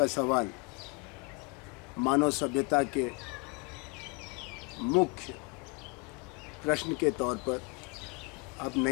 सवाल मानव सभ्यता के मुख्य प्रश्न के तौर पर अब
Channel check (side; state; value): right; quieter; 29.4 dB